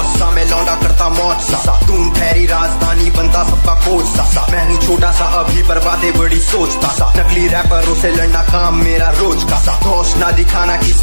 सा मैं लौंडा करता मौज सा, तून ठहरी राजधानी बनता सबका कोच सा। मैं हूँ छोटा सा अभी पर बातें बड़ी सोचता सा, नकली रैपरों से लड़ना काम मेरा रोज का सा। होश ना दिखाना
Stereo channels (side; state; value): both; inverted; correlation -1.00